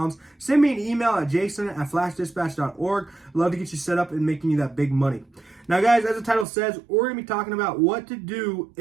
send me an email at jason@flashdispatch.org. Love to get you set up and making you that big money. Now, guys, as the title says, we're going to be talking about what to do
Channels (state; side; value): drops out; left; at 6.5 s